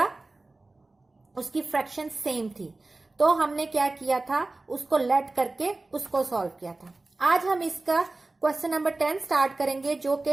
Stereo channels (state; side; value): quieter; left; 3.1 dB